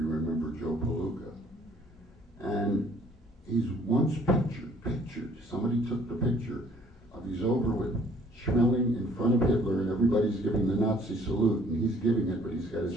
remember Joe Palooka. And he's once pictured, somebody took the picture of he's over with Schmeling in front of Hitler and everybody's giving the Nazi salute and he's giving it, but he's got his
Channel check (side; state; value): both; normal; correlation 0.58